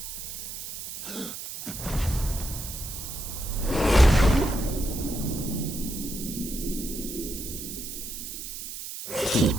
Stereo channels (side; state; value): right; noise; hiss, 8 dB below the sound